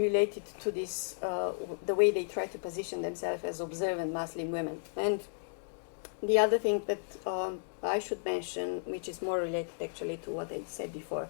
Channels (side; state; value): right; silent; digital silence